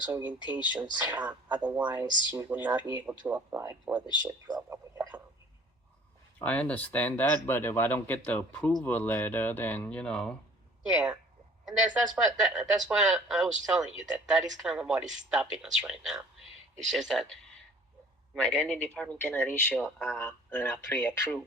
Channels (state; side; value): normal; both; correlation 0.52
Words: orientations, otherwise you will not be able to apply for the SHIP program with the county. I understand that, but if I don't get the approval letter, then Yeah, and that's why I was telling you that is kind of what is stopping us right now. It's just that my lending department cannot issue a